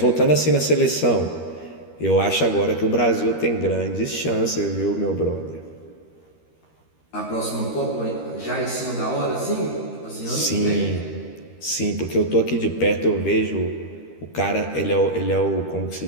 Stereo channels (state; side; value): late; right; 13 ms